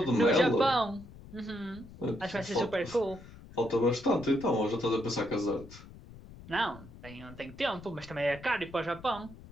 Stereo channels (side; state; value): left; noise; rumble, 18 dB below the sound